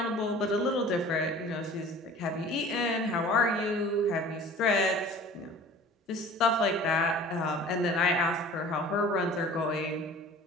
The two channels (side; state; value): both; normal; correlation 0.44